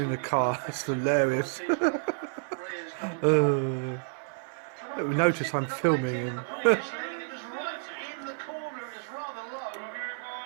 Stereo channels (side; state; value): left; silent; 58 dB below the other